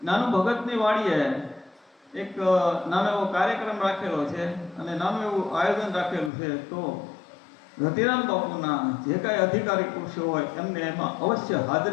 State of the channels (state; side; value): drops out; right; at 6.3 s